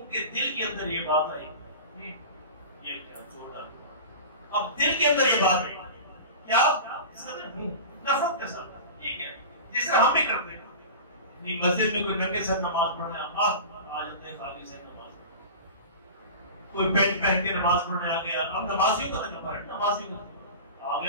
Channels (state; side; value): inverted; both; correlation -0.32